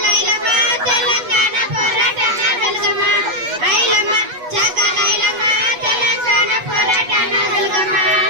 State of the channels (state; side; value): late; left; 8.2 ms